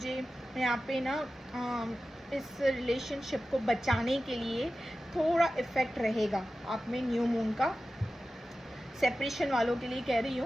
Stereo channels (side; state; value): both; normal; correlation 0.94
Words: यहाँ पे ना इस रिलेशनशिप को बचाने के लिए थोड़ा इफ़ेक्ट रहेगा आप में न्यू मून का। सेपरेशन वालों के लिए कह रही